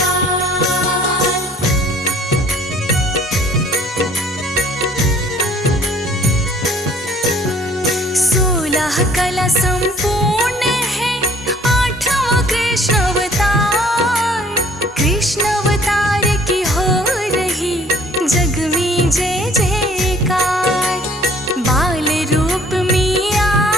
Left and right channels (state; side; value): normal; both; correlation 0.57